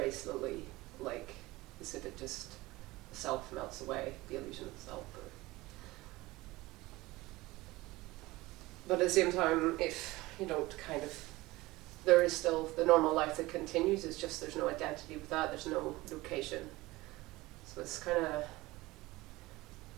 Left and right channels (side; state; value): left; quieter; 19.9 dB